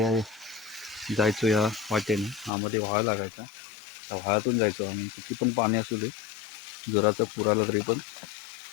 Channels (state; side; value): drops out; right; at 2.5 s